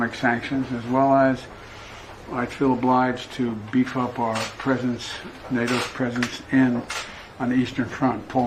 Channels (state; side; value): identical; both; correlation 1.00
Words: sanctions, as well as I feel obliged to beef up our presence, NATO's presence on the Eastern Front,